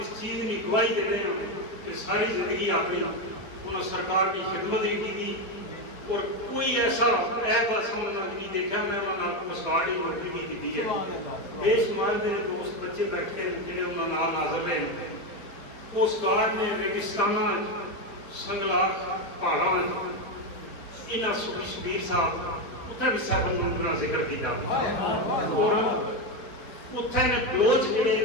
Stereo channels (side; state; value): right; late; 4.2 ms